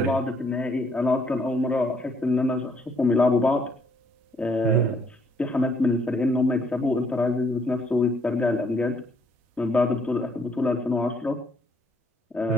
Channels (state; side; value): normal; both; correlation 0.67